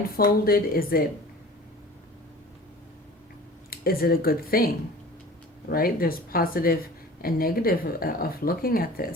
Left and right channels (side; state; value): both; normal; correlation 0.42